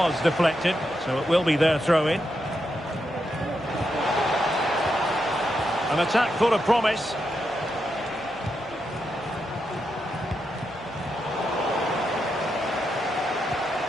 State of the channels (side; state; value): both; normal; correlation 0.84